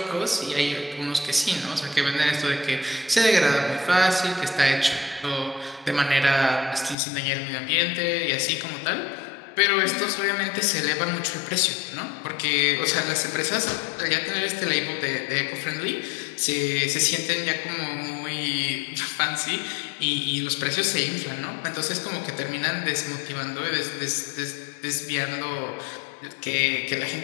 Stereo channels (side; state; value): right; drops out; at 7.0 s